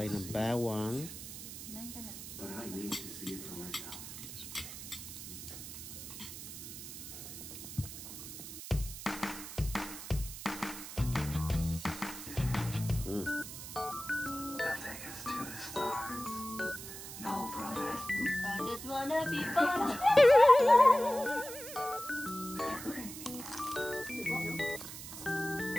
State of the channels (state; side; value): noise; right; hiss, 10 dB below the sound